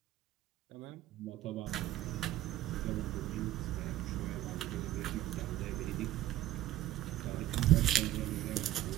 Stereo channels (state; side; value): quieter; left; 14.3 dB